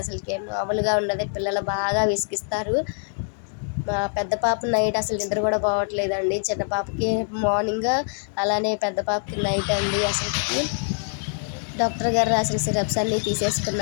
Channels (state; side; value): silent; right; 62 dB below the other